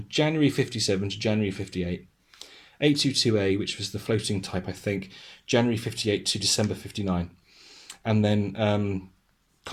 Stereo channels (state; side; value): identical; both; correlation 1.00